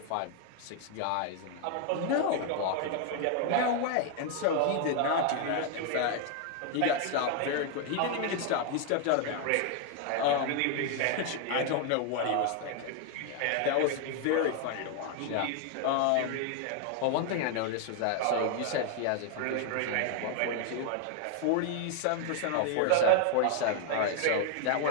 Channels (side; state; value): both; different; correlation 0.00